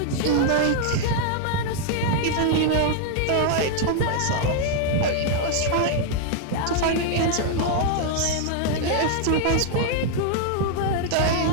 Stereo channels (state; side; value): different; both; correlation 0.00